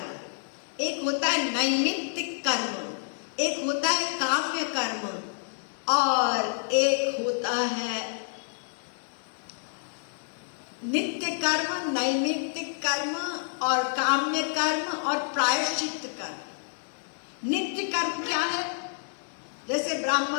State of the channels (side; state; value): right; silent; digital silence